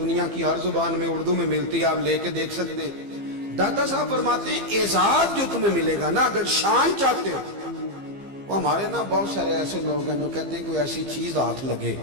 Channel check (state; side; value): late; left; 15 ms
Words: की हर जुबान में उर्दू में मिलती है, आप लेके देख सकते हैं। दाता साहब फरमाते हैं एजाज जो तुम्हें मिलेगा ना, अगर शान चाहते हो, वो हमारे ना बहुत सारे ऐसे लोग हैं जो कहते हैं कोई ऐसी चीज हाथ लगे,